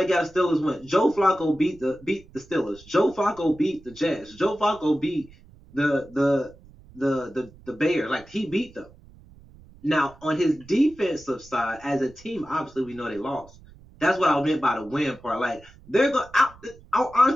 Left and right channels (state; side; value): noise; right; rumble, 24 dB below the sound